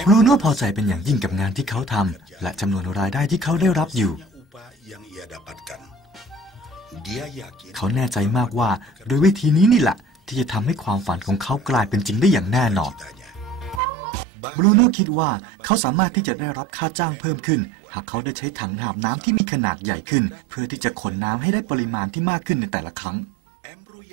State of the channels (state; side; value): drops out; left; at 13.8 s